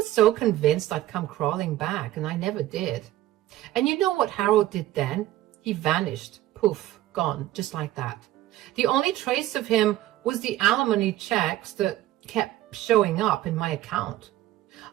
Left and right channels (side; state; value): left; quieter; 14.7 dB